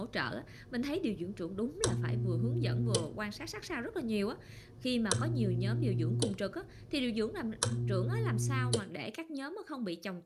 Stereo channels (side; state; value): both; identical; correlation 1.00